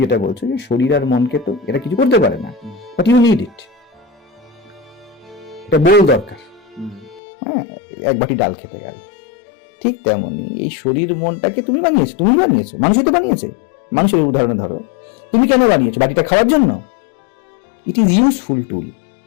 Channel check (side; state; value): right; drops out; at 7.2 s